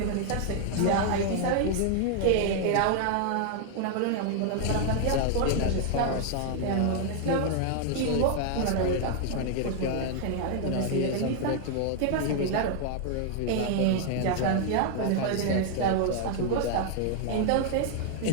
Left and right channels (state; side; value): different; both; correlation 0.00